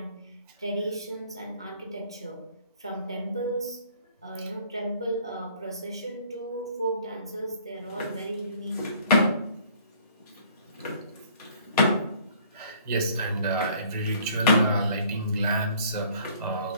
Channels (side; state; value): both; inverted; correlation -0.57